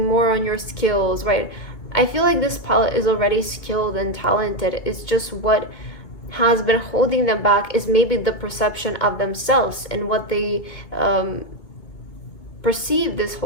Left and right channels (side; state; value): right; late; 2.2 ms